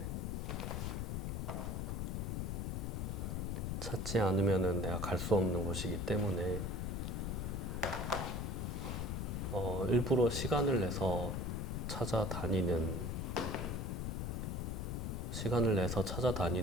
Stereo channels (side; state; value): left; noise; rumble, 1 dB below the sound